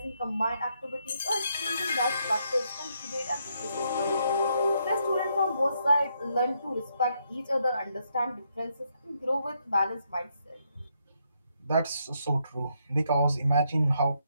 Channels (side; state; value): both; inverted; correlation -0.76